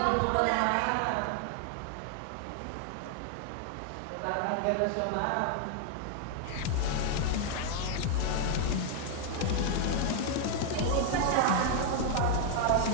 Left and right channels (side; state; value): both; different; correlation 0.00